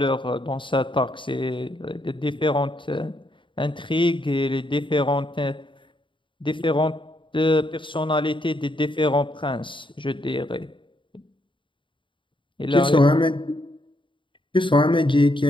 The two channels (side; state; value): right; late; 0.24 ms